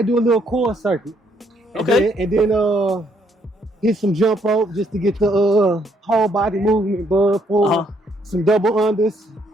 do a little core circuit. Okay. And then hit some jump rope just to get the whole body movement, some double unders.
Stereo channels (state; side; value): normal; both; correlation 0.70